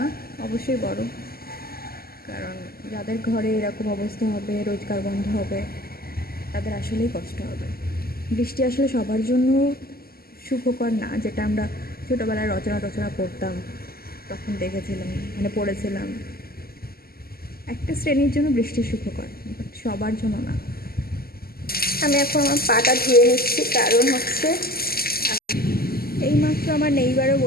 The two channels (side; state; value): right; late; 0.44 ms